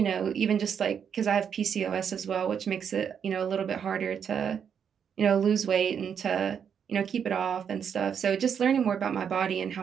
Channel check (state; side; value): quieter; left; 7.6 dB